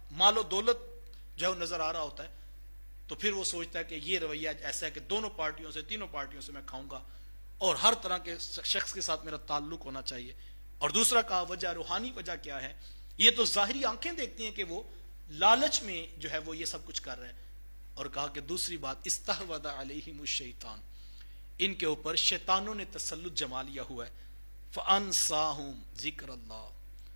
مال و دولت جو ہے نظر آ رہا ہوتا ہے تو پھر وہ سوچتا ہے کہ یہ رویہ ایسا ہے کہ دونوں پارٹیوں سے، تینوں پارٹیوں سے میں کھاؤں گا اور ہر طرح کے شخص کے ساتھ میرا تعلق ہونا چاہیے. اور دوسرا کہا وجہ، روحانی وجہ کیا ہے؟ یہ تو ظاہری آنکھیں دیکھتی ہیں کہ وہ لالچ میں جو ہے وہ یہ سب کچھ کر رہے ہیں. اور کہا کہ دوسری بات استحوذ علیہم الشیطان، ان کے اوپر شیطانوں نے تسلط جما لیا ہوا ہے. فانساہم ذکر اللہ،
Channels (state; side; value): inverted; both; correlation -1.00